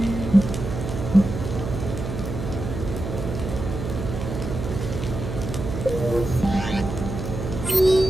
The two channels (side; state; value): right; noise; hum, 5 dB below the sound